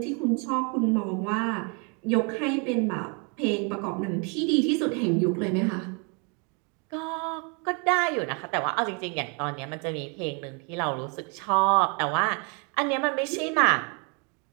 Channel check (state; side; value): quieter; left; 34.6 dB